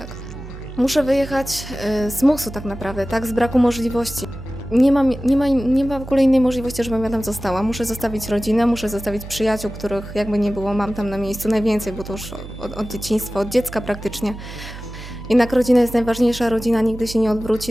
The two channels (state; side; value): noise; right; hum, 12 dB below the sound